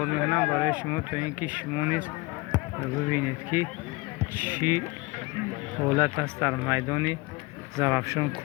мекунам барои шумо, то ин ки шумо низ бибинед ки чӣ ҳолат аст дар майдони Зарафшон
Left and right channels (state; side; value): quieter; right; 24.4 dB